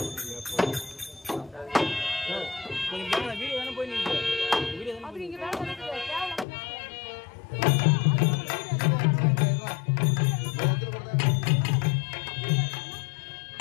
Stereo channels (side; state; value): right; drops out; at 6.5 s